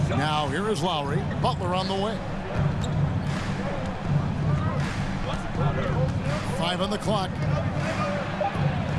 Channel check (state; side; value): identical; both; correlation 1.00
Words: Now here is Lowry. Butler on the wing. 5 on the clock.